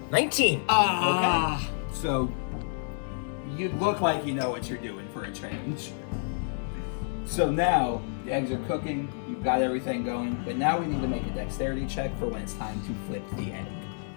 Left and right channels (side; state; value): right; silent; digital silence